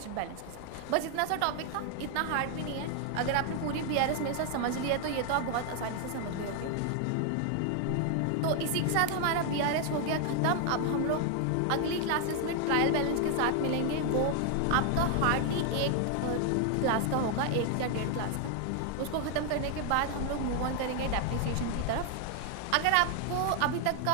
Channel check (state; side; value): different; both; correlation 0.00